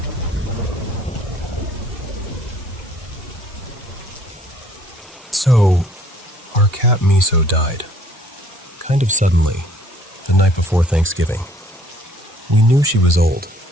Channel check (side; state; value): both; normal; correlation 0.59